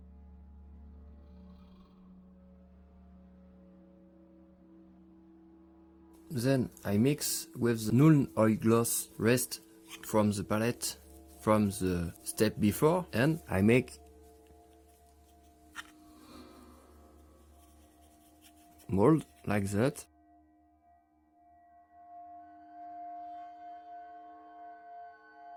Then I mix with the null oil gloss rest from the palette from the step before and I make mold like that.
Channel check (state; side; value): identical; both; correlation 1.00